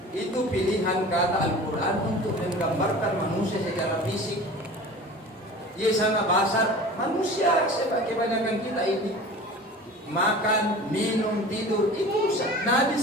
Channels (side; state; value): both; normal; correlation 0.39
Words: Itu pilihan kata Al-Quran untuk menggambarkan manusia secara fisik. Ia sangat basar. Manusia kebanyakan kita ini makan, minum, tidur. Itu Nabi